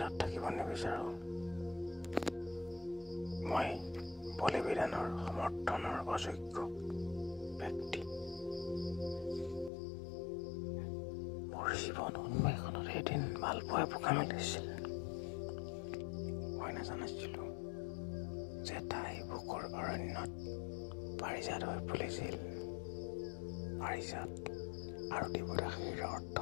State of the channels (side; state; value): right; drops out; at 9.7 s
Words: থাকিব নিবিচাৰোঁ। মই বলিবিধানৰ সমৰ্থনৰ অযোগ্য ব্যক্তি। মোৰ জীৱন উন্মেষণত এদিন মালপোৱাই পোকা মেলিছিল। মই নাজানিছিলোঁ যে তাই বুকুৰ অৰণ্যত পাৰিজাত হৈ ফুলিছিল। পাৰিজাত আৰু দেৱদাসীৰ অৰ্থ